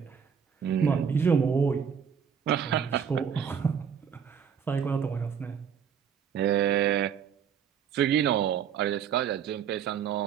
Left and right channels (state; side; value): quieter; left; 7.6 dB